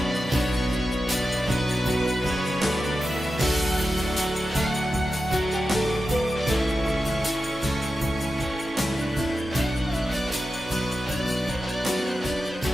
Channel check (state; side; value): normal; both; correlation 0.91